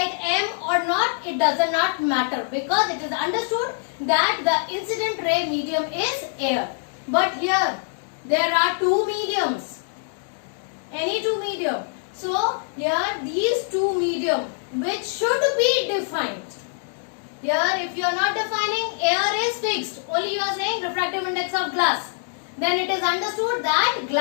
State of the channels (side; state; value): right; silent; digital silence